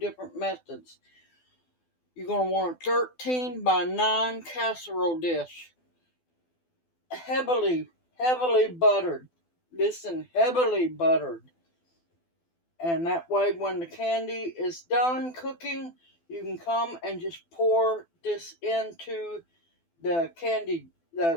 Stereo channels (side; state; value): right; late; 12 ms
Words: methods. You're going to want a 13 by 9 casserole dish. Heavily buttered. Listen, heavily buttered. And that way when the candy is done cooking, you can come and just pour this into the